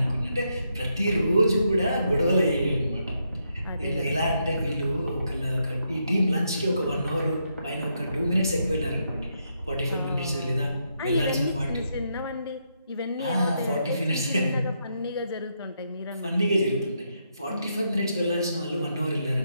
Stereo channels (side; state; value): both; inverted; correlation -0.80